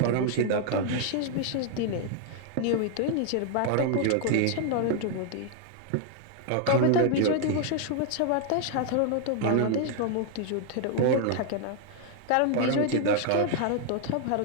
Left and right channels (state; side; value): different; both; correlation 0.00